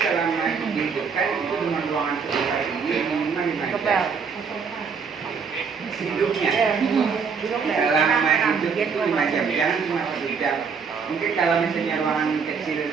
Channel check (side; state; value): left; quieter; 5.8 dB